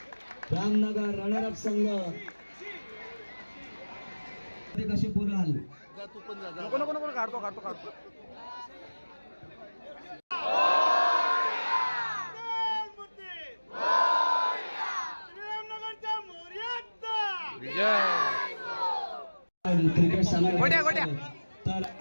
रामनगर रनरअप संघ ते कसे पुराल. नको नको नको काढतो काढतो काढतो क्रिकेट सामना गोट्या, गोट्या. तर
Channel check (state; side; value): inverted; both; correlation -1.00